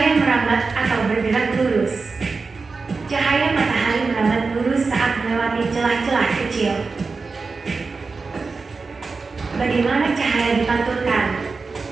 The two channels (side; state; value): left; quieter; 4.3 dB